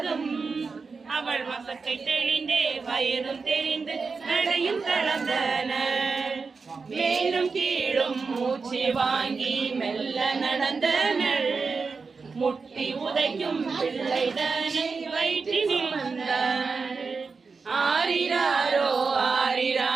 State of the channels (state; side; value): quieter; left; 4.7 dB